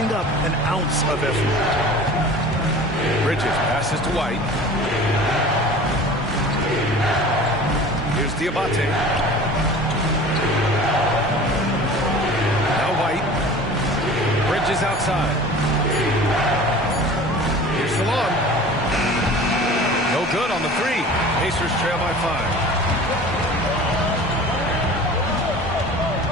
up an ounce of effort. Bridges passes to White. Here's Diabate. Now White. Bridges outside. Here's Salon. No good on the 3. Pacers trail by 5.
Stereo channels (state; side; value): normal; both; correlation 0.41